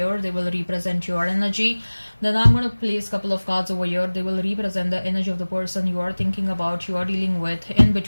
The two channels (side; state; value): both; inverted; correlation -1.00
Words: They will represent your energy. Then I'm going to place a couple of cards over here. They will represent the energy of the person you are thinking about, you are dealing with. In